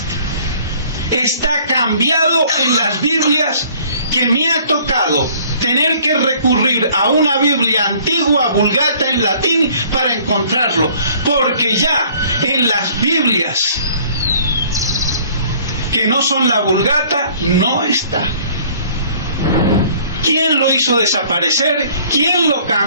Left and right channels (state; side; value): inverted; both; correlation -0.55